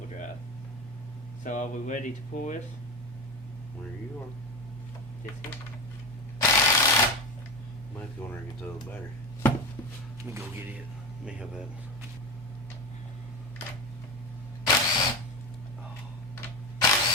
So are we ready to pull this? Where you are. This here? Might have to go in there and get the other battery. Let me go get it. Let me have that one.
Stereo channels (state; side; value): noise; right; hum, 26 dB below the sound